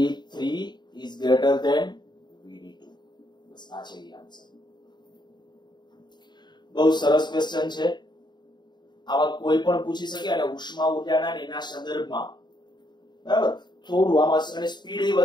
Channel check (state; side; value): late; right; 0.21 ms